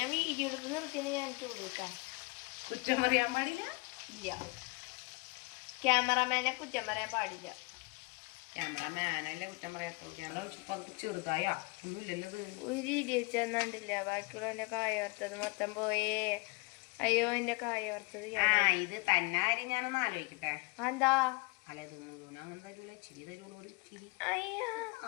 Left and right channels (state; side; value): quieter; right; 27.8 dB